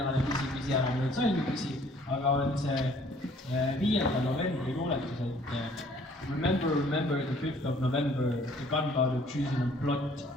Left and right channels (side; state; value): both; normal; correlation 0.58